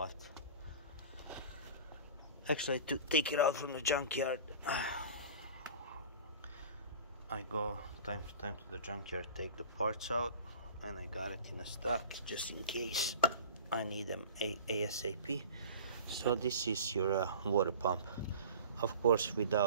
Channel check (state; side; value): inverted; both; correlation -0.40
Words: actually, to take it out from the junkyard. I go time to time to the junkyard, take the parts out, and I got it in a stock just in case I need them ASAP. So this is your water pump. Of course,